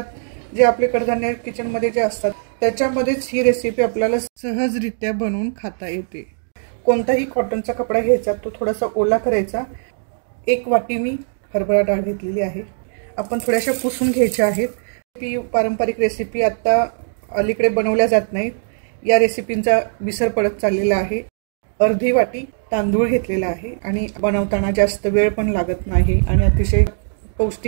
जे आपले कडधान्य किचन मध्ये जे असतात त्याच्यामध्येच ही रेसिपी आपल्याला सहजरित्या बनवून खाता येते। कोणताही कॉटनचा कपडा घ्यायचा, तो थोडासा ओला करायचा। 1 वाटी मी हरभरा डाळ घेतलेली आहे। आपण थोड्याशा पुसून घ्यायच्या आहेत। ही पारंपरिक रेसिपी आता अलीकडे बनवल्या जात नाहीत। या रेसिपींचा विसर पडत चाललेला आहे। अर्धी वाटी तांदूळ घेतलेला आहे आणि बनवताना जास्त वेळ पण लागत नाही आणि अतिशय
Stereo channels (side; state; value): left; silent; digital silence